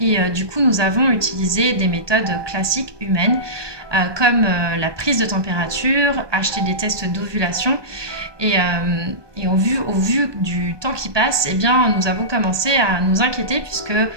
du coup nous avons utilisé des méthodes classiques humaines comme la prise de température, acheter des tests d'ovulation et au vu du temps qui passe, eh bien, nous avons commencé à nous inquiéter puisque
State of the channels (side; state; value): left; late; 1.2 ms